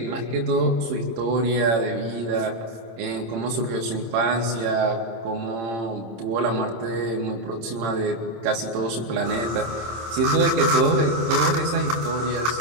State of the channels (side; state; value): left; late; 26 ms